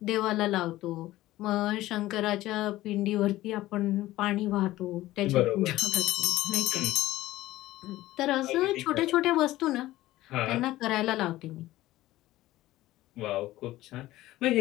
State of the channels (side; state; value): right; quieter; 16.3 dB